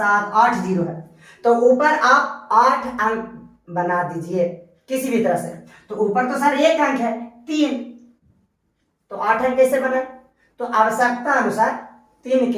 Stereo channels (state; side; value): identical; both; correlation 1.00